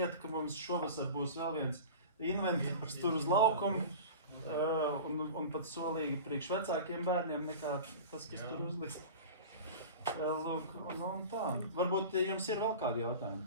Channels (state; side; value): inverted; both; correlation -0.35